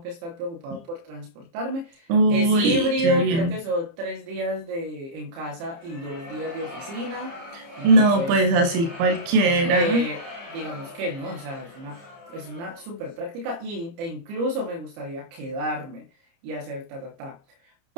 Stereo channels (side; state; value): left; late; 30 ms